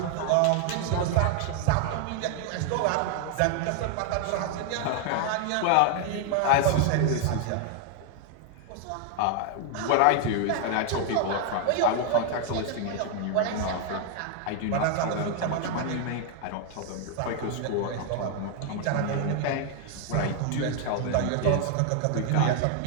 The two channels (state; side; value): different; both; correlation 0.00